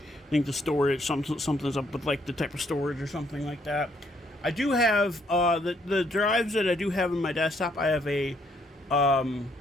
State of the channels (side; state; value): both; normal; correlation 0.69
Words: storage, something's up with like the type of storage or something like that. I do have the drives that I do have in my desktop. Um,